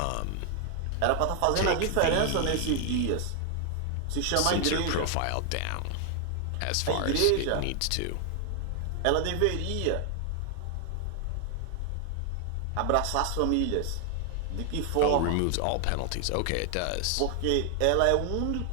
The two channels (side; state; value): both; different; correlation 0.00